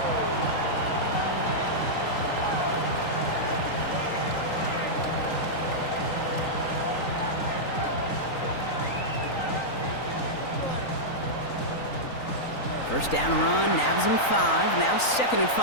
First down run, nabs him 5, now 2nd and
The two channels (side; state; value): right; late; 3.9 ms